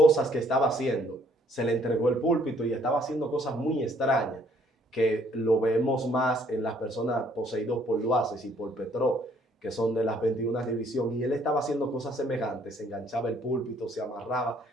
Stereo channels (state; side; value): normal; both; correlation 0.64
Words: que estaba haciendo. Se le entregó el púlpito y estaba haciendo cosas muy extrañas, que lo vemos más en las personas poseídas por Luaces y por Petró, que son de las 21 divisiones. Y él estaba haciendo cosas semejantes, se enganchaba el púlpito, se